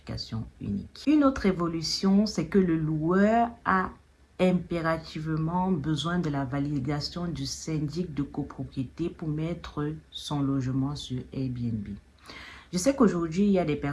unique. Une autre évolution, c'est que le loueur a impérativement besoin de la validation du syndic de copropriété pour mettre son logement sur Airbnb. Je sais qu'aujourd'hui, il y a des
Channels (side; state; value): both; identical; correlation 1.00